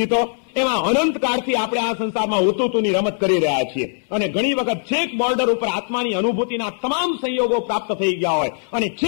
તો એમાં અનંતકાળથી આપણે આ સંસારમાં હુતુતુની રમત કરી રહ્યા છીએ. અને ઘણી વખત છેક બોર્ડર ઉપર આત્માની અનુભૂતિના તમામ સંયોગો પ્રાપ્ત થઈ ગયા હોય અને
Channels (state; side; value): silent; right; digital silence